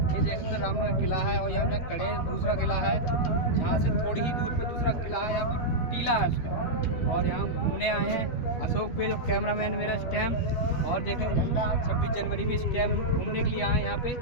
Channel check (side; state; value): right; late; 12 ms